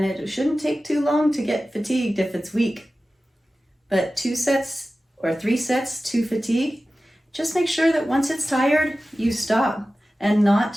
it shouldn't take too long to get fatigued if it's weak. But 2 sets or 3 sets to fatigue, just make sure that once it's tired, you stop and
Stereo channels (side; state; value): both; normal; correlation 0.95